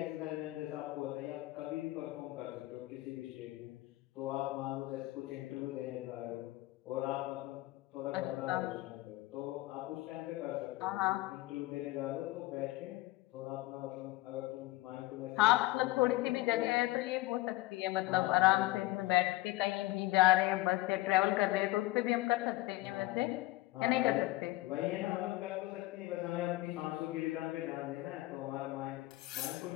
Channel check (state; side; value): quieter; right; 18.8 dB